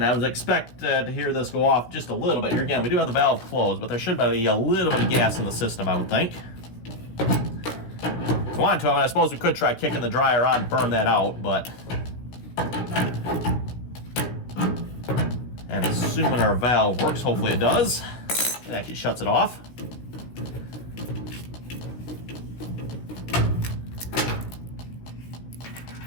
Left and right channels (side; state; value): right; late; 16 ms